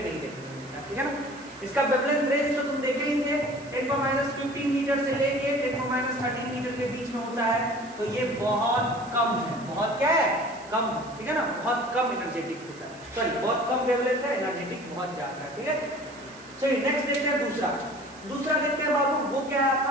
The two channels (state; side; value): noise; right; hiss, 23 dB below the sound